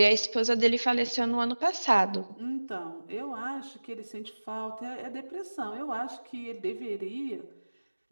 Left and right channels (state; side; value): inverted; both; correlation -1.00